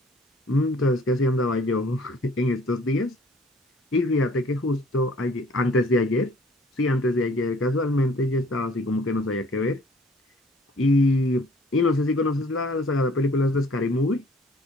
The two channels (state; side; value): normal; both; correlation 0.56